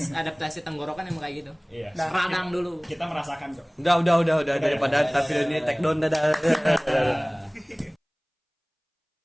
Adaptasi tenggorokan emang kayak gitu. Iya. Radang dulu. Kita merasakan kok. Udah daripada tapi ini take down dadah.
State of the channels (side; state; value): both; identical; correlation 1.00